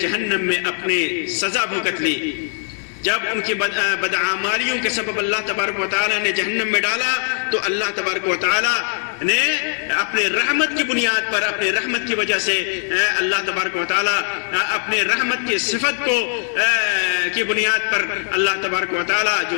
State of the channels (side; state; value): right; silent; 59 dB below the other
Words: جہنم میں اپنی سزا بھگت لی، جب ان کی بدعمالیوں کے سبب اللہ تبارک و تعالیٰ نے جہنم میں ڈالا، تو اللہ تبارک و تعالیٰ نے اپنے رحمت کی بنیاد پر، اپنے رحمت کی وجہ سے اللہ تبارک و تعالیٰ اپنے رحمت کی صفت کو کی بنیاد پر اللہ تبارک و تعالیٰ جو